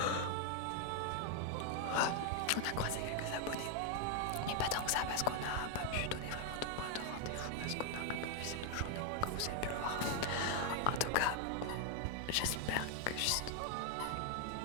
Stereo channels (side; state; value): both; different; correlation 0.00